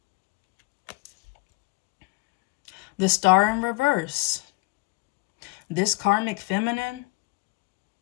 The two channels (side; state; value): right; quieter; 24.5 dB